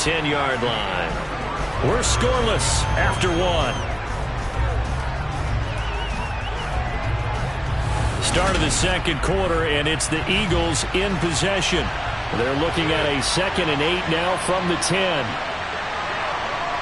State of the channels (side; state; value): both; identical; correlation 1.00